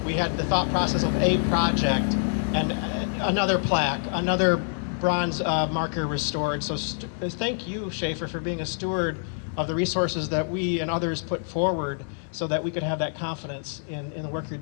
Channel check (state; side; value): silent; right; digital silence